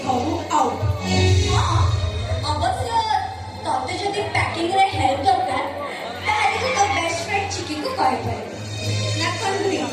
ଘରୁ ଆଉ ଅବଶ୍ୟ ତତେ ଯଦି ପ୍ୟାକିଂରେ ହେଲ୍ପ ଦରକାର ତାହେଲେ ତୁ ତୋ ବେଷ୍ଟ ଫ୍ରେଣ୍ଡ ଚିକିକୁ କହିପାରିବୁ ନା କଣ?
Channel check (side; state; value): both; identical; correlation 1.00